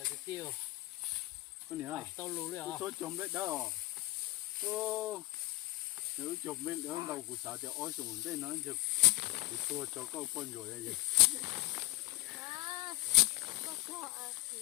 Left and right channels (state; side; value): quieter; right; 21.0 dB